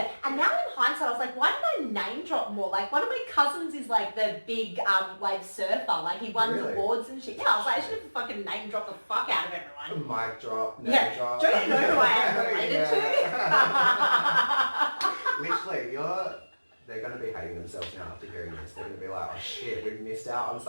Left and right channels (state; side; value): inverted; both; correlation -1.00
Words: And now in hindsight, I was like, why did I name drop more? Like, one of my cousins is like the big wave surfer. Like, he won awards and shit. Yeah, I was like, I should have fucking name dropped the fuck out of everyone. Mic drop, name drop. Don't you know who I am related to? Literally, you're they're going to be hating themselves now after hearing this. They're going to be like, oh shit, we've missed out on